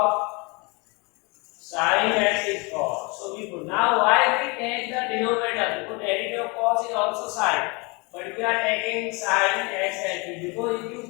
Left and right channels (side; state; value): right; quieter; 28.9 dB